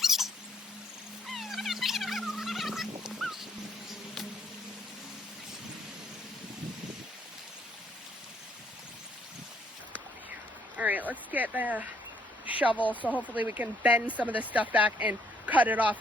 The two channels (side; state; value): both; normal; correlation 0.69